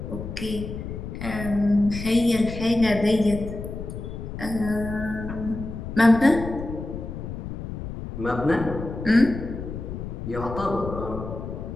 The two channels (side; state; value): left; noise; rumble, 8 dB below the sound